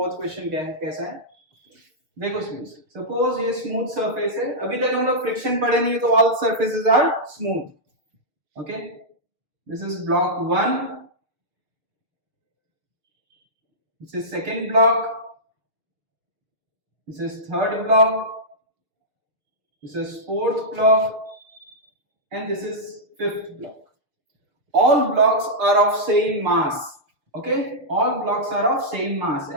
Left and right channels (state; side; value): late; left; 6.6 ms